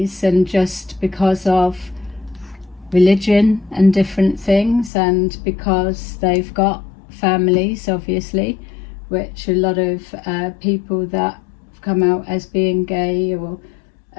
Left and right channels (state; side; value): drops out; right; at 4.9 s